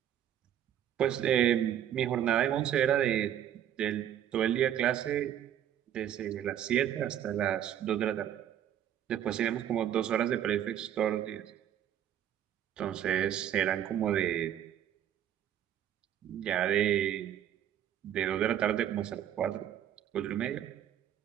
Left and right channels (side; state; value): left; quieter; 10.5 dB